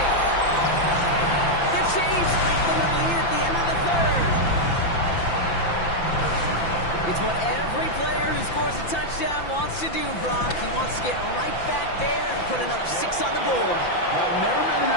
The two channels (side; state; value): right; late; 5.9 ms